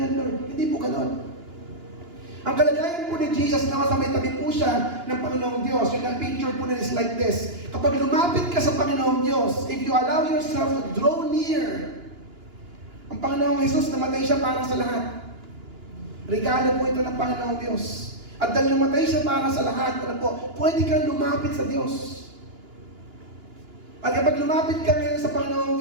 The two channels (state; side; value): late; left; 2.9 ms